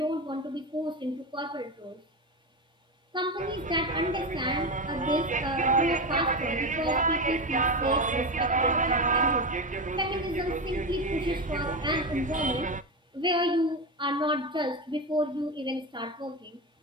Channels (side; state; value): both; normal; correlation 0.18